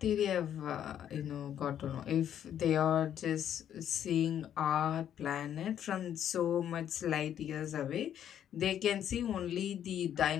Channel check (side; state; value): right; quieter; 10.0 dB